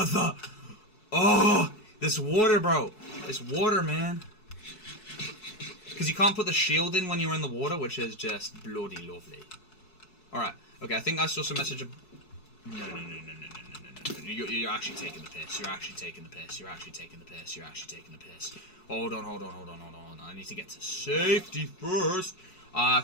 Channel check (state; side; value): late; right; 4.6 ms